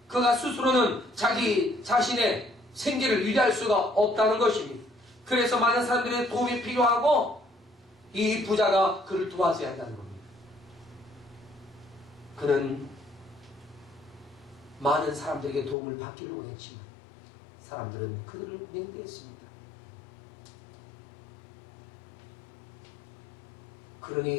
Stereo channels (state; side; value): drops out; right; at 15.8 s